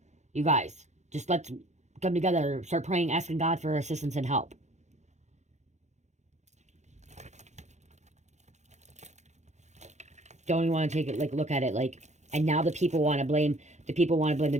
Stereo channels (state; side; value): late; left; 0.33 ms